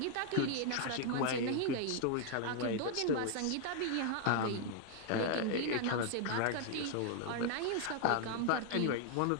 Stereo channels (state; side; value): different; both; correlation 0.00